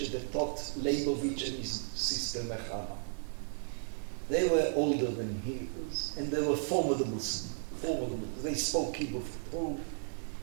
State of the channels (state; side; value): silent; left; digital silence